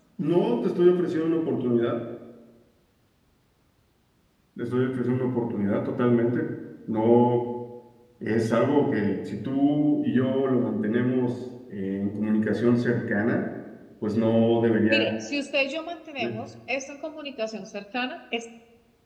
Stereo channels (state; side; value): identical; both; correlation 1.00